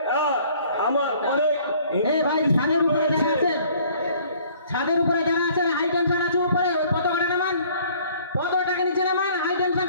আমার অনেক ভাই ছাদের উপরে যারা আছেন, ছাদের উপরে যারা আছেন, হাই টেনশন আছে উপরে, ওই পতাকাটা নামান, পতাকাটাকে নিচে নামান, হাই টেনশন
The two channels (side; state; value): both; inverted; correlation -0.56